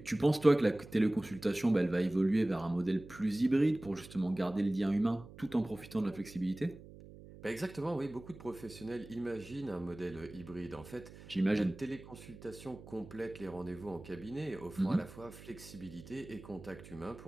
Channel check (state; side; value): noise; right; hum, 17 dB below the sound